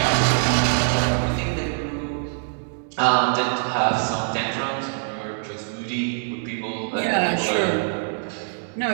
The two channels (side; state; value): left; silent; 63 dB below the other